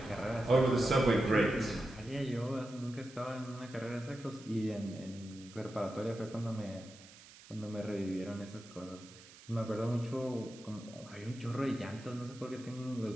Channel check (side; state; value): right; noise; hiss, 20 dB below the sound